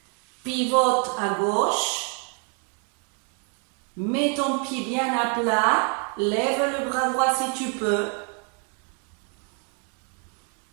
Pivote à gauche. Mets ton pied bien à plat. Lève le bras droit si tu peux.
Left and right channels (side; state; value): left; quieter; 37.5 dB